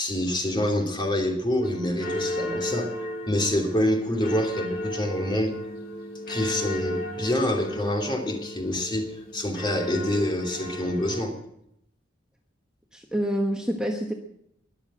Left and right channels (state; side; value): normal; both; correlation 0.69